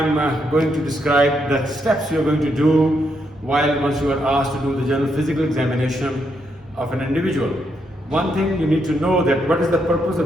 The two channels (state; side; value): normal; both; correlation 0.78